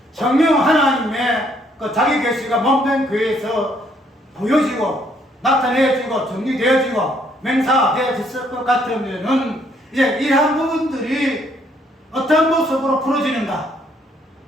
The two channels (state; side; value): normal; both; correlation 0.68